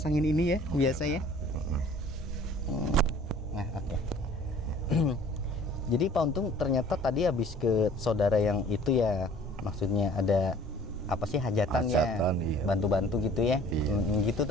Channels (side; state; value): both; normal; correlation 0.51